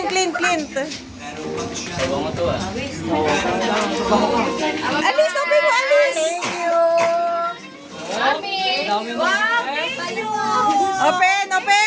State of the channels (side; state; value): both; identical; correlation 1.00